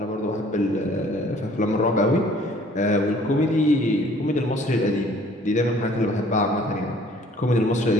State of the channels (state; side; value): normal; both; correlation 0.56